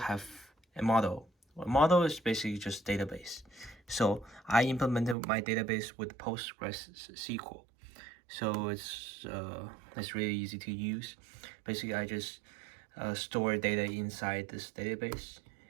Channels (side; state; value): left; drops out; at 5.2 s